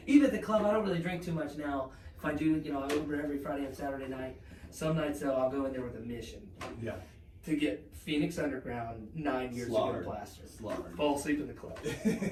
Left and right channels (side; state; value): both; identical; correlation 1.00